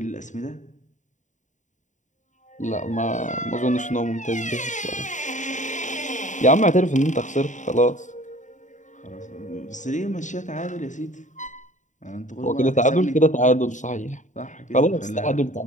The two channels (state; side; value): late; right; 0.36 ms